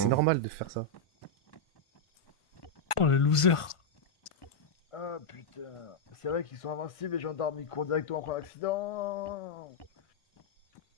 c'est normal de faire ça. Oh le loser. Ah putain, c'est vrai qu'ils sont invincibles, les gendarmes, ils courent directement après l'accident.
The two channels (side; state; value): right; late; 1.5 ms